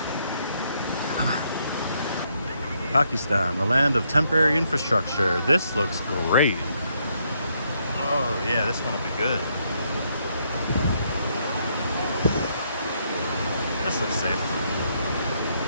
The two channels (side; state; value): both; inverted; correlation -0.75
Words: Pakistan, the land of temporary infrastructure. This looks great. Oh yeah, this one will be good. This looks safe.